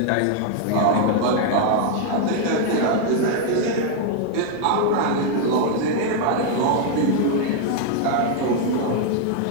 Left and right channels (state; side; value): different; both; correlation 0.00